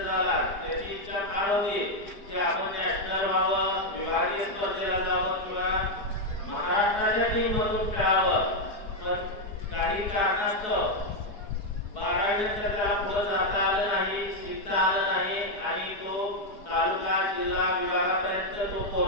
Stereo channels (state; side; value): late; right; 4.7 ms